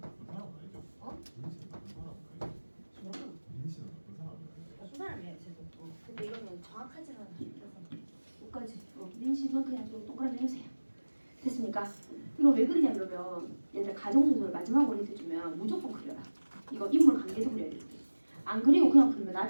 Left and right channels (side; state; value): both; inverted; correlation -1.00